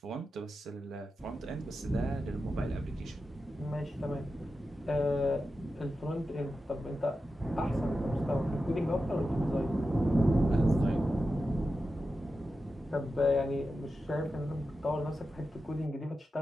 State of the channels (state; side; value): normal; both; correlation 0.91